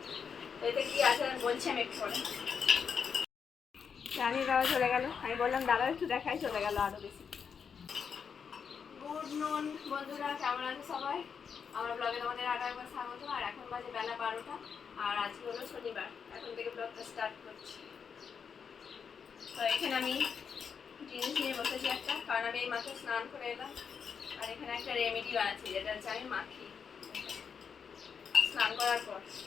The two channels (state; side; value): quieter; right; 6.6 dB